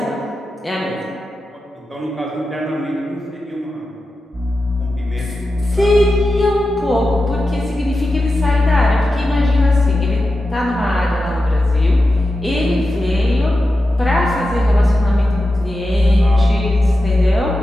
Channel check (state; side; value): normal; both; correlation 0.91